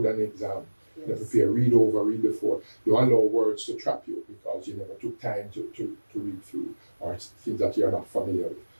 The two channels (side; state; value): both; inverted; correlation -1.00